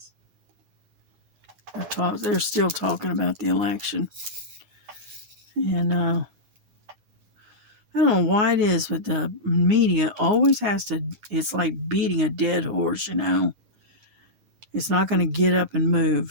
They're still talking about the election. And I don't know why it is, but the media always has to... It's like beating a dead horse, you know. It's not going to get up and move.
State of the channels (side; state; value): left; late; 9.6 ms